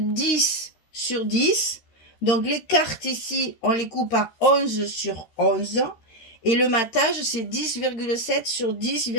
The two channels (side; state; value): right; late; 13 ms